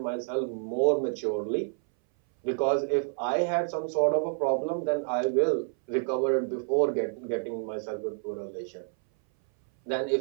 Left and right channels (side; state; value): left; silent; 59 dB below the other